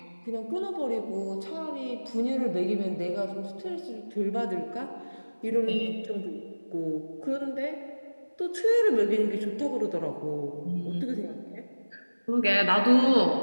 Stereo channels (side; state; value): both; inverted; correlation -1.00